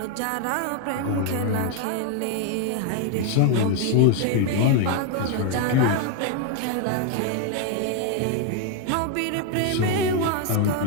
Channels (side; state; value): both; different; correlation 0.01